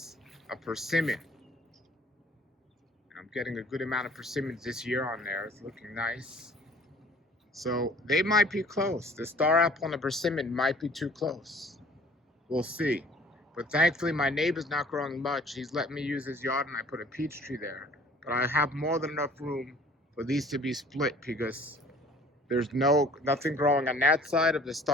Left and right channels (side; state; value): both; normal; correlation 0.52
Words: a persimmon. I'm getting a good amount of persimmons this year on there. It's looking nice. So they might be close. The star apple and the persimmon might be too close. We'll see. But thankfully my neighbor's not growing much. He's letting me use his yard and I put a peach tree there. But I have more than enough room for these to be split because there's nothing growing on that side of the